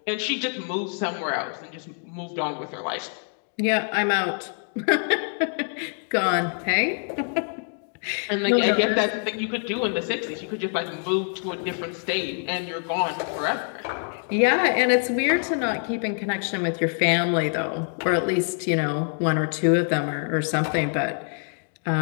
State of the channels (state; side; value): silent; right; 55 dB below the other